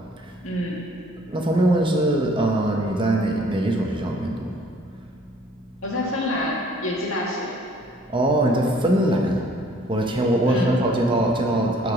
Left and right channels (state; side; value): normal; both; correlation 0.57